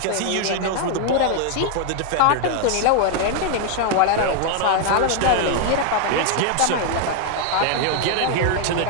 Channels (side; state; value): both; different; correlation 0.00